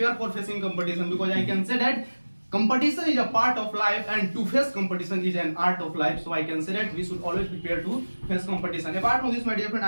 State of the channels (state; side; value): inverted; both; correlation -1.00